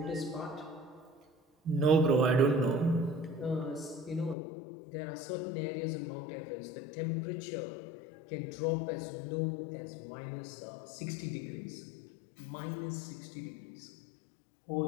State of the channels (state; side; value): drops out; right; at 4.4 s